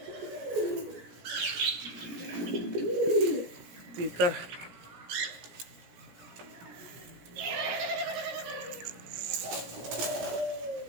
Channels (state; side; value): late; left; 17 ms